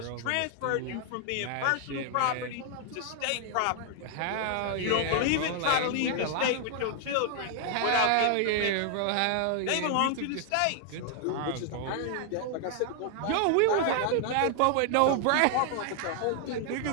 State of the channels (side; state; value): both; different; correlation 0.00